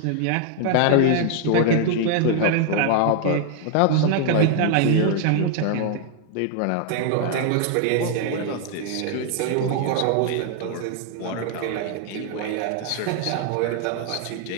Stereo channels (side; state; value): both; different; correlation 0.00